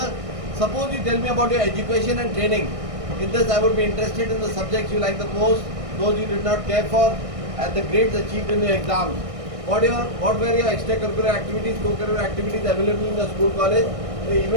Suppose you tell me about your education and training. In this, I would be interested in the subjects you like the most, those you did not care for, and the grades achieved in your exams. What were your extracurricular activities, co-curricular activities available in the school, college, the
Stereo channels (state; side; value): late; left; 1.6 ms